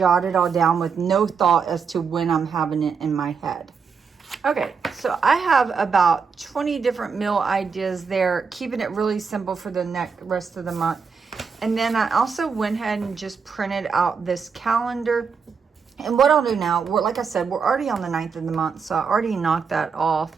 it all down with no thought as to when I'm having it in my head. Okay, so I have about 20 different meal ideas there, keeping it really simple for the rest of the month. And then I also went ahead and just printed out this calendar. And what I'll do now, like I said, we're already on the 9th of the month, so I already knocked that off.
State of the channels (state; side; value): quieter; left; 5.7 dB